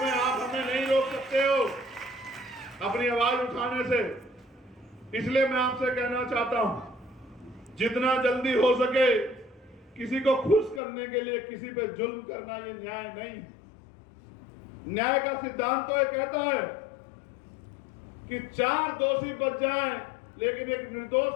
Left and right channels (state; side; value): drops out; right; at 10.8 s